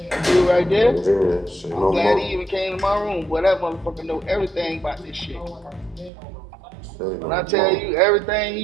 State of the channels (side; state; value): left; drops out; at 6.1 s